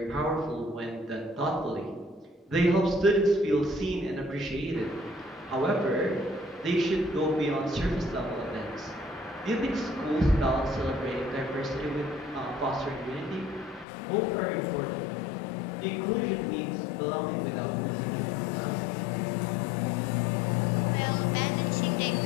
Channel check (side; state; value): right; drops out; at 13.9 s